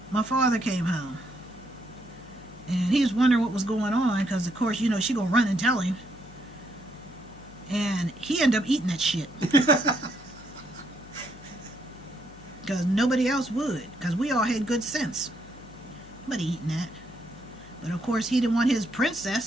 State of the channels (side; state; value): left; noise; hum, 21 dB below the sound